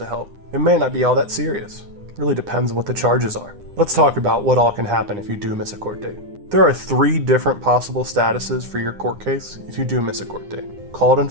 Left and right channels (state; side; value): late; left; 9.8 ms